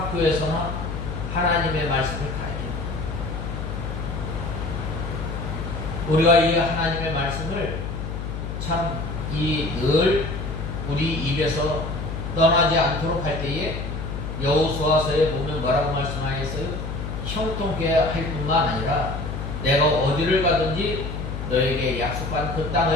하나님의 말씀을 가르칩니다. 우리가 이 하나님의 말씀을 참 늘 우리 입에서 떠나지 않도록 할 때에 여호수아서에 보면 뭐라고 말씀하셨어요? 형통케 할 뿐만 아니라 내가 어디를 가든지 너에게 약속한 그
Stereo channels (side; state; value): left; noise; hum, 5 dB below the sound